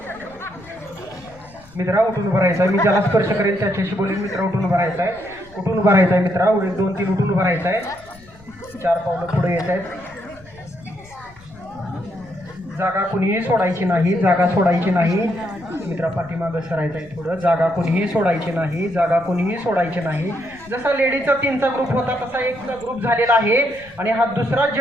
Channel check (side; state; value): left; noise; rumble, 24 dB below the sound